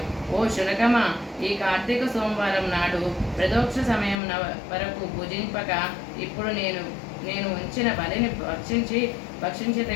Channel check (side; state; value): right; drops out; at 4.2 s